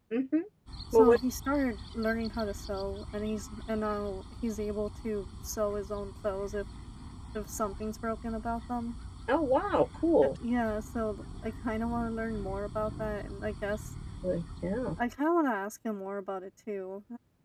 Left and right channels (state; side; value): identical; both; correlation 1.00